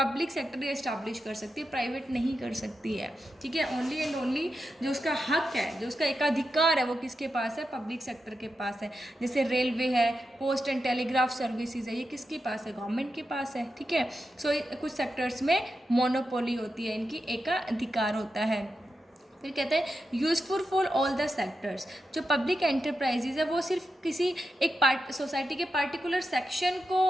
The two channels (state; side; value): normal; both; correlation 0.88